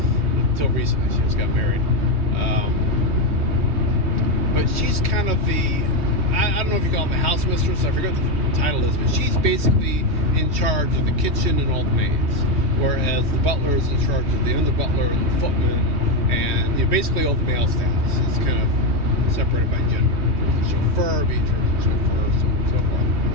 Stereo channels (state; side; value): late; left; 3.2 ms